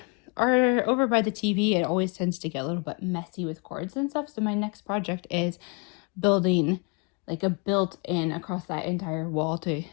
over by the TV, it always tends to get a little bit messy with cords and stuff. So my next project is building like a built-in across that entire wall to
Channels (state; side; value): quieter; right; 32.7 dB